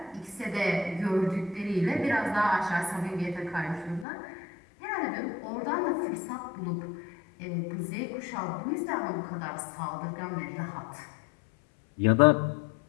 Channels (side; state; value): right; drops out; at 4.0 s